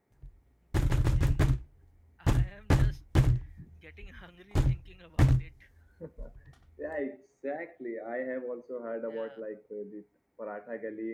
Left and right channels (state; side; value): identical; both; correlation 1.00